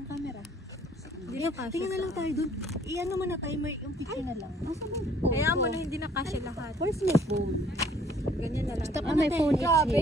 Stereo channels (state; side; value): normal; both; correlation 0.59